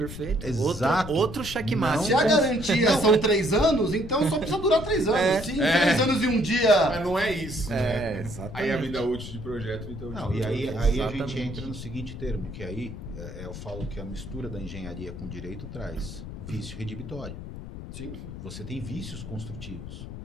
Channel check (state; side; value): noise; left; rumble, 10 dB below the sound